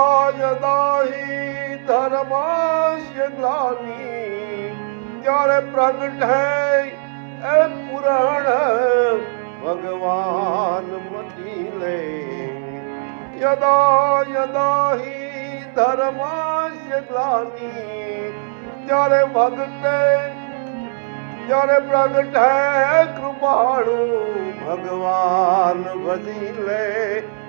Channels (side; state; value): left; silent; 64 dB below the other